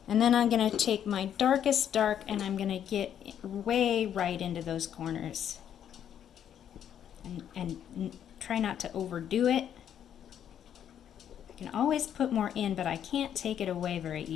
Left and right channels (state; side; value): quieter; right; 9.5 dB